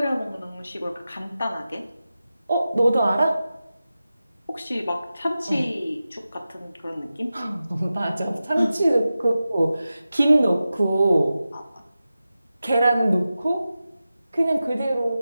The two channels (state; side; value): inverted; both; correlation -0.94